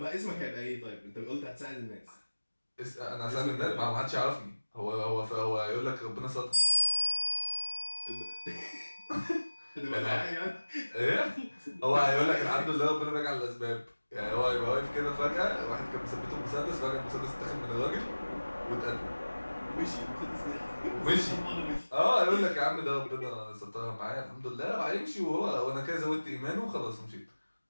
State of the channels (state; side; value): inverted; both; correlation -1.00